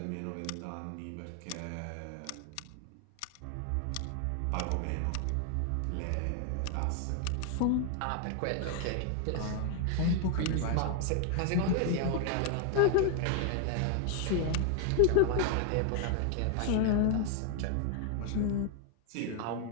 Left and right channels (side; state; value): both; different; correlation 0.00